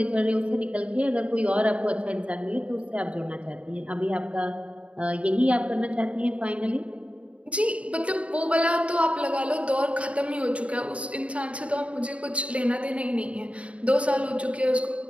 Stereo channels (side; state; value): left; late; 0.063 ms